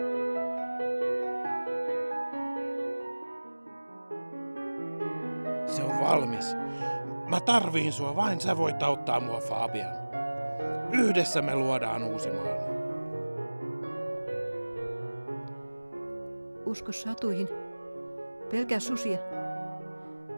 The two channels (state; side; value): inverted; both; correlation -1.00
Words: Se on valmis. Mä tarviin sua, vain sä voit auttaa mua, Fabian. Yhdessä me luodaan uusi maailma. Usko satuihin. Pelkää susia.